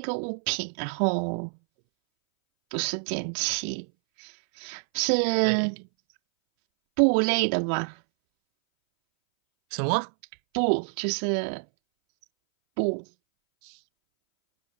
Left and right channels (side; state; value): left; silent; 61 dB below the other